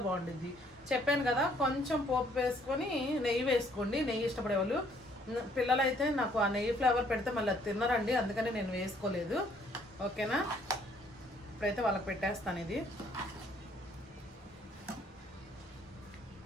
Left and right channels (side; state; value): both; normal; correlation 0.64